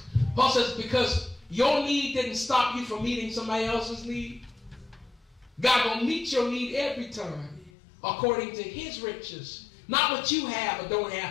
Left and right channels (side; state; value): right; drops out; at 7.7 s